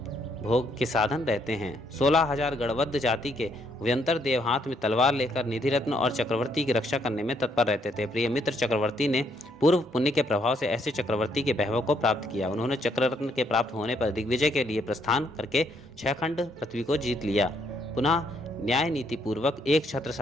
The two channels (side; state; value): both; normal; correlation 0.71